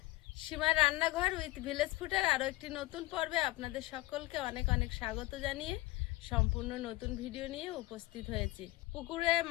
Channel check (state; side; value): quieter; right; 19.2 dB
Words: সীমার রান্নাঘর উইথ ভিলেজ ফুডের আরও একটি নতুন পর্বে আপনাদের সকলকে অনেক অনেক স্বাগত জানিয়ে সম্পূর্ণ নতুন ভিডিও নিয়ে উপস্থিত হয়েছি। পুকুরে